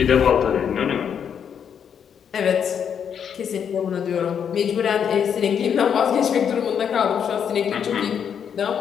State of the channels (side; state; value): right; quieter; 7.9 dB